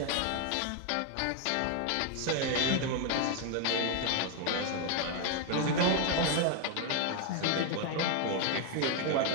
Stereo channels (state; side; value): different; both; correlation 0.01